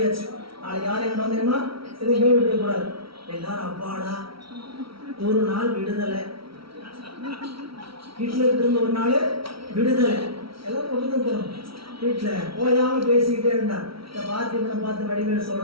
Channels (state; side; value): late; left; 0.75 ms